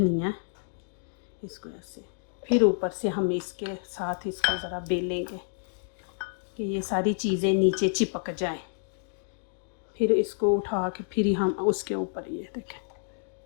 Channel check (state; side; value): silent; right; digital silence